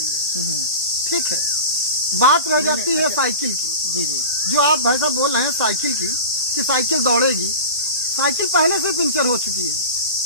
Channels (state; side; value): inverted; both; correlation -0.33